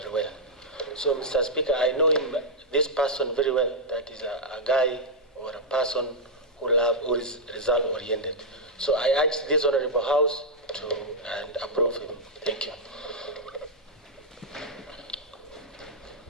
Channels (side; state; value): both; normal; correlation -0.06